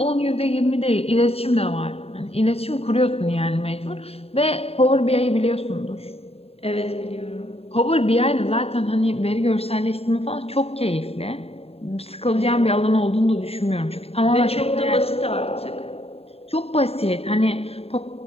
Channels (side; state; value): right; late; 0.29 ms